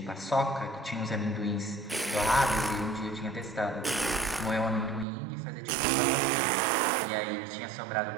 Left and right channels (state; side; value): drops out; left; at 5.1 s